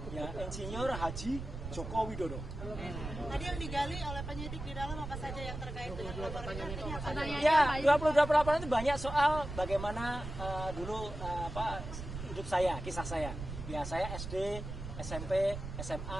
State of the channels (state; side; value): noise; right; rumble, 8 dB below the sound